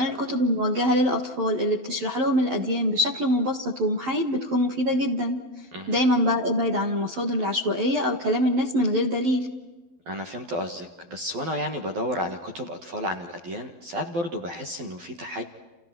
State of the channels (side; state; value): left; late; 12 ms